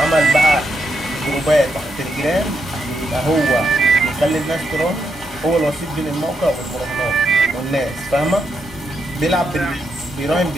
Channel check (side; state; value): both; normal; correlation 0.81